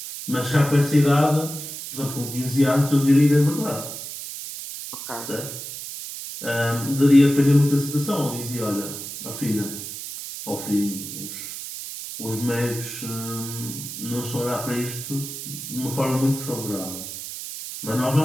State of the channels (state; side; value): noise; right; hiss, 9 dB below the sound